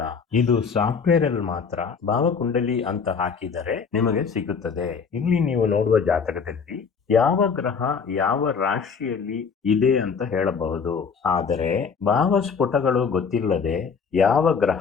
ಇದು ಸಾಫ್ಟ್ವೇರ್ ಅಲ್ಲಿ ಮಾತ್ರ ಭಾವಕುಂಡಲಿ ಅಂತ ಹಾಕಿದರೆ ನಿಮಗೆ ಸಿಗುತ್ತದೆ. ಇಲ್ಲಿ ನೀವು ನೋಡುವ ಜಾತಕದಲ್ಲಿ ಯಾವ ಗ್ರಹ ಯಾವ ರಾಶಿಯಲ್ಲಿ ಇದೆ ಅಂತ ಹೇಳಬಹುದು. ಆದರೆ ಭಾವಸ್ಫುಟಗಳು ಗೊತ್ತಿಲ್ಲದೆ ಯಾವ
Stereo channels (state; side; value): quieter; right; 5.9 dB